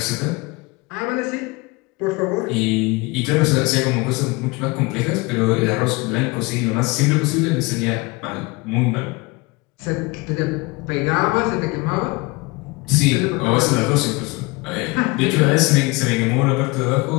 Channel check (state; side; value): quieter; right; 24.7 dB